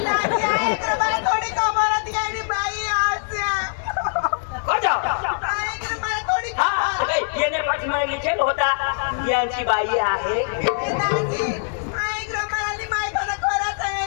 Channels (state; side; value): silent; right; digital silence